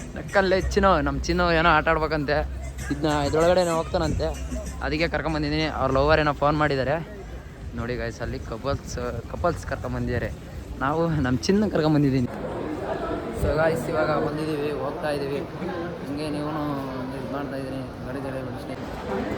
ನಕ್ಕಲ್ಲೇ ಚಿನ್ನು. ನಮ್ಮ ಚಿನ್ನು ಏನೋ ಆಟ ಆಡ್ಬೇಕಂತೆ. ಇದ್ರೊಳಗಡೆ ಹೋಗ್ತಾನಂತೆ, ಅದಕ್ಕೆ ಕರ್ಕೊಂಬಂದಿದ್ದೀನಿ. ಅವ್ರ ಲವರ್ ಏನೋ ಫೋನ್ ಮಾಡಿದ್ದಾರೆ ನೋಡಿ ಗಾಯ್ಸ್. ಅಲ್ಲಿ ಕಪಲ್ಸ್ ಕರ್ಕೊಂಬಂದಿದ್ದಾರೆ. ನಾವು ನಮ್ಮ ಚಿನ್ನ ಕರ್ಕೊಂಬಂದಿದ್ದೀನಿ. ಸೊ ಗಾಯ್ಸ್ ಇವಾಗ ಬಂದಿದ್ದೀವಿ, ಹೋಗ್ತಾ ಇದ್ದೀವಿ. ಹಿಂಗೆ ನೀವು ಇದು ಮಾಡ್ತಾ ಇದ್ದೀನಿ ಗಾಡಿ ಬಿಡಿಸ್ತೀನಿ.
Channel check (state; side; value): identical; both; correlation 1.00